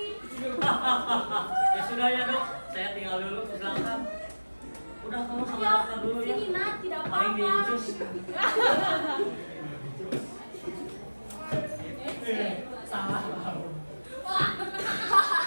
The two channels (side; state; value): both; inverted; correlation -1.00